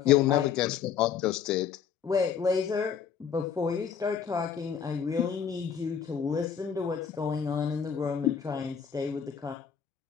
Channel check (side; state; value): right; quieter; 7.5 dB